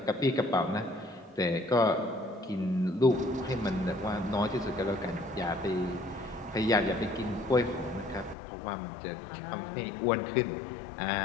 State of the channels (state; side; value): drops out; right; at 8.3 s